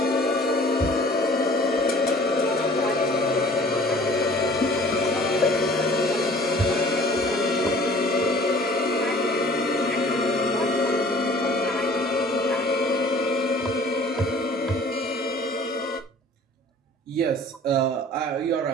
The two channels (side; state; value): both; normal; correlation 0.50